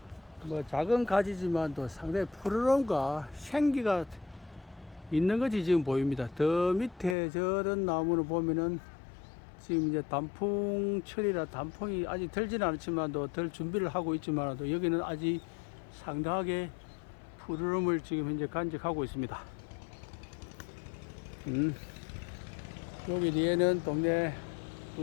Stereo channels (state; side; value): drops out; right; at 7.2 s